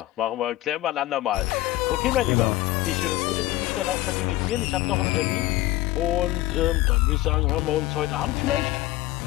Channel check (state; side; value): quieter; right; 16.6 dB